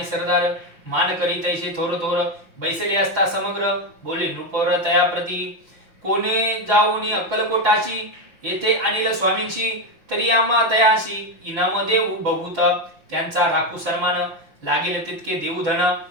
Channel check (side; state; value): left; late; 5.9 ms